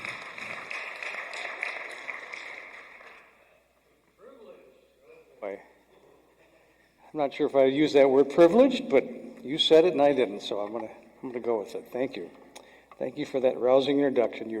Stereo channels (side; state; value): both; identical; correlation 1.00